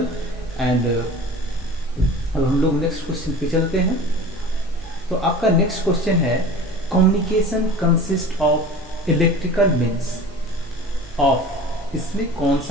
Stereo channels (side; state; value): both; normal; correlation 0.39